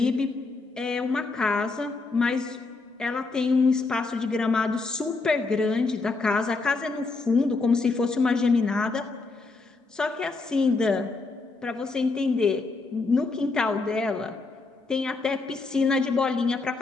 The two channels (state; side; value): quieter; right; 3.8 dB